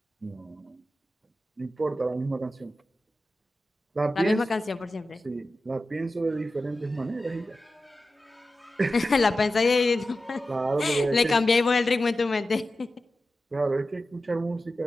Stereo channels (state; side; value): normal; both; correlation 0.93